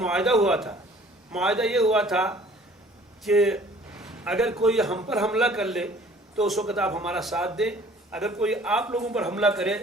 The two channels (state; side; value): normal; both; correlation 0.53